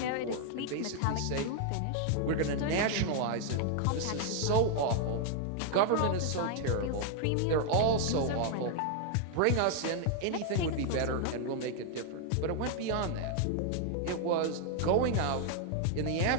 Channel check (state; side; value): different; both; correlation 0.00